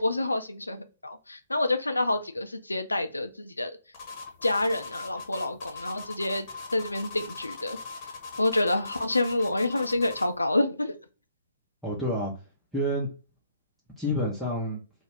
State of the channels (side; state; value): both; inverted; correlation -0.79